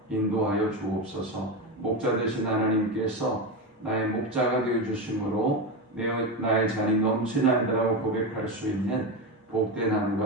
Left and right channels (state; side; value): normal; both; correlation 0.16